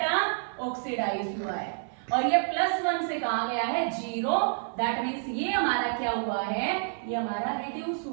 ऑक्सीडाइज हुआ है। और ये +1 से कहा गया है 0, दैट मीन्स ये हमारा क्या हुआ है, ये हमारा रिड्यूस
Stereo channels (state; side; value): silent; left; 59 dB below the other